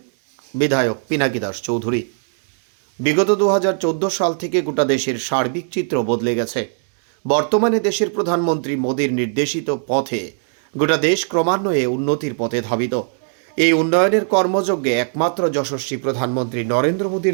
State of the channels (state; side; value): silent; left; 57 dB below the other